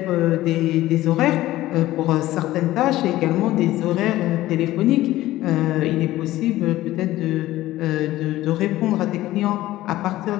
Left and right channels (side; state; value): right; quieter; 15.9 dB